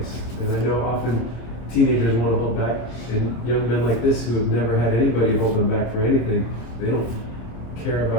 And I know often teenagers want to hold back, and young men like this who have never had anybody hold them back for anything, they don't care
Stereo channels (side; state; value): right; late; 26 ms